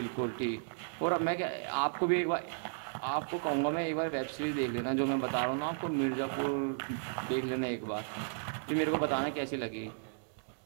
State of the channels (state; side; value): silent; left; digital silence